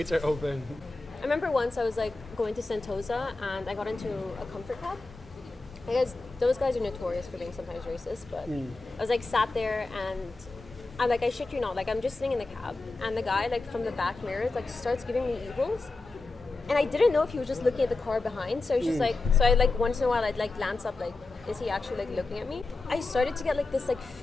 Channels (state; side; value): quieter; right; 3.4 dB